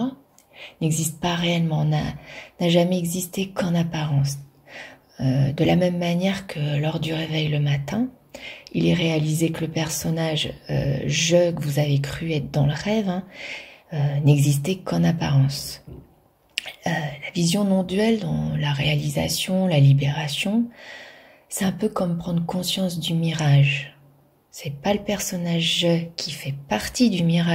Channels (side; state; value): both; identical; correlation 1.00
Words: n'existe pas réellement, n'a jamais existé qu'en apparence. De la même manière que lors du réveil le matin, il est réalisé que le personnage je que vous avez cru être dans le rêve n'existait qu'en apparence. La vision non duelle dans la réalisation, la libération, c'est un peu comme prendre conscience du mirage. C'est pas le personnage je qui fait partie du